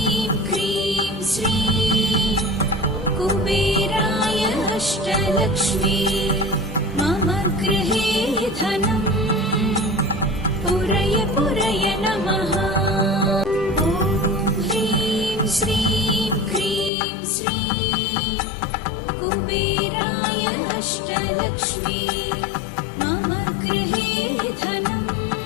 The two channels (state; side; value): drops out; right; at 16.9 s